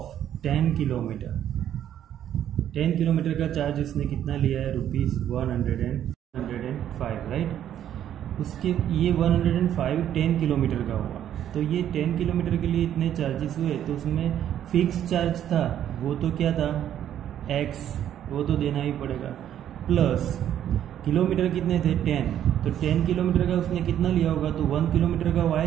10 kilometre. 10 kilometre का चार्ज इसने कितना लिया है ₹105, राइट। उसके ये 105 10 किलोमीटर का हुआ, तो ये 10 किलोमीटर के लिए इतने चार्जेस हुए। तो उसमें फिक्स चार्ज था वो तो क्या था X, वो तो देना ही पड़ेगा, प्लस किलोमीटर कितने थे 10। तो 10 किलोमीटर का उसने कितना लिया होगा, तो 1 किलोमीटर का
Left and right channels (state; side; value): quieter; left; 10.6 dB